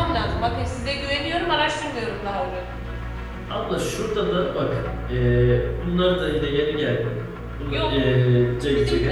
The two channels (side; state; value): both; identical; correlation 1.00